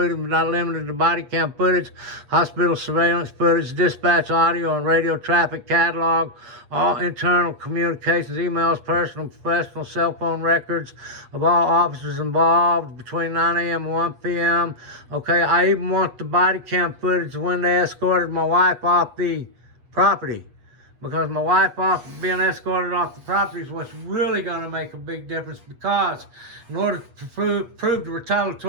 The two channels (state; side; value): late; left; 8.3 ms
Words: but not limited to body cam footage, hospital surveillance footage, dispatch audio and radio traffic catalog, all internal communications, emails, personal and professional cell phone records of all officers involved between 9 a.m. and 1 p.m. Okay, I even want the body cam footage when they escorted my wife off the property. Because my wife being escorted off the property is what's really going to make a big difference, because in order to prove the